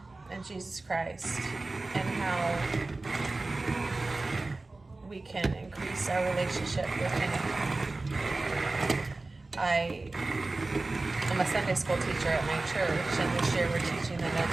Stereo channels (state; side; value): quieter; left; 3.2 dB